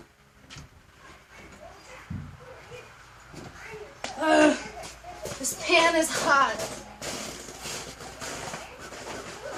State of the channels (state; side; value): identical; both; correlation 1.00